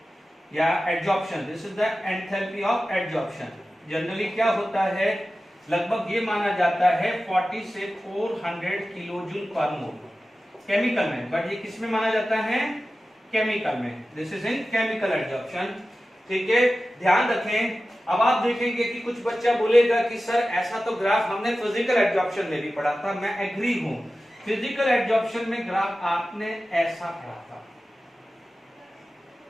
या absorption, this is the enthalpy of absorption. Generally क्या होता है, लगभग ये माना जाता है 40 से 400 किलो जूल पर मोल केमिकल में, बट ये किस में माना जाता है, केमिकल में। This is in chemical absorption. ठीक है, ध्यान रखें। अब आप देखेंगे कि कुछ बच्चा बोलेगा कि सर ऐसा तो ग्राफ हमने फिजिकल एब्जॉर्प्शन में भी पढ़ा था। मैं एग्री हूं, फिजिकल एब्जॉर्प्शन में ग्राफ आपने ऐसा पढ़ा था,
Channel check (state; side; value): normal; both; correlation 0.95